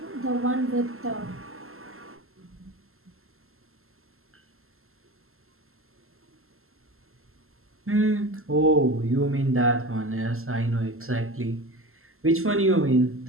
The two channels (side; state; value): left; late; 0.62 ms